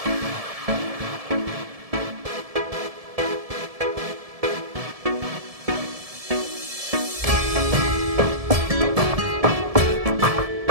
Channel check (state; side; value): late; left; 1.7 ms